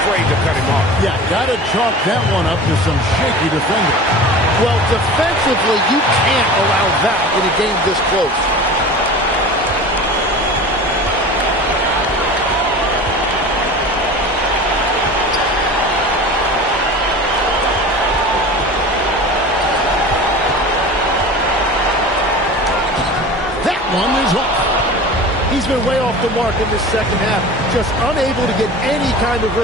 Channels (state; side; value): normal; both; correlation 0.36